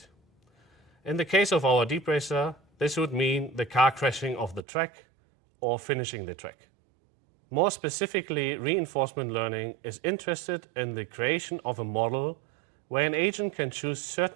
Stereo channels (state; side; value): drops out; left; at 4.7 s